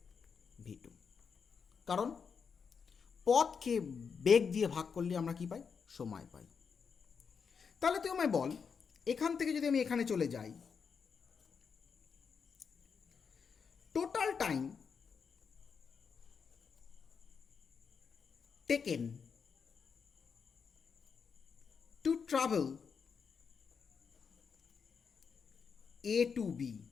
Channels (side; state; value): right; quieter; 6.1 dB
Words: v2। কারণ পথকে বেগ দিয়ে ভাগ করলে আমরা কি পাই, সময় পাই। তাহলে তুই আমায় বল এখান থেকে যদি আমি এখানে চলে যাই, total time taken to travel A to B,